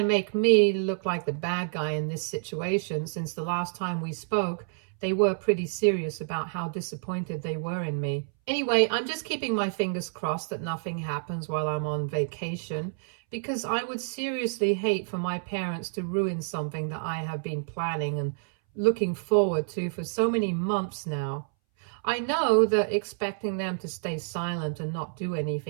make me look like the bad guy in this situation, since the last time we spoke, they were pretty serious about how disappointed they were in me. Anyway, I'm just keeping my fingers crossed that nothing happens while I'm on vacation, because I would seriously hate for my parents to ruin something that I have been planning and looking forward to for so many months now. I know that expecting them to stay silent and not do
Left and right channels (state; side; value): silent; left; 59 dB below the other